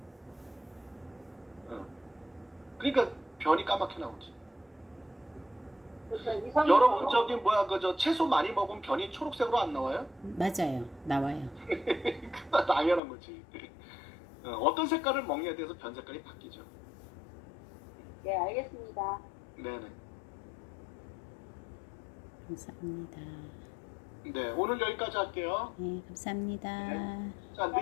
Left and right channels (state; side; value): drops out; right; at 13.0 s